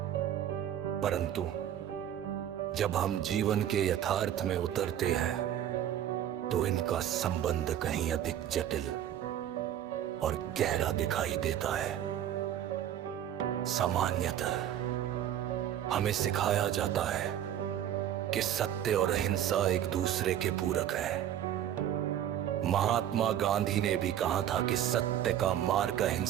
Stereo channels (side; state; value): left; quieter; 10.8 dB